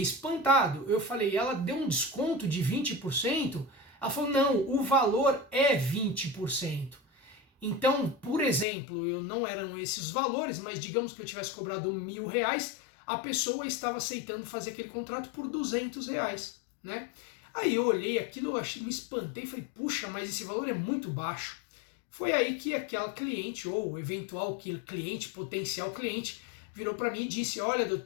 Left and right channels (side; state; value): right; drops out; at 8.7 s